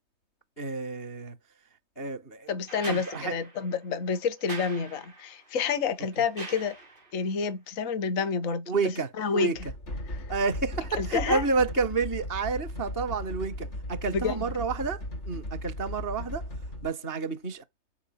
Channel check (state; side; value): late; right; 3.2 ms